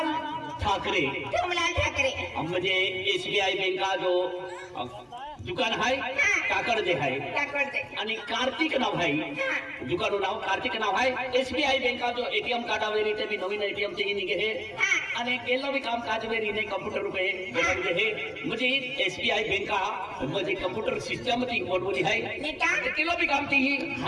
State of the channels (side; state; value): both; identical; correlation 1.00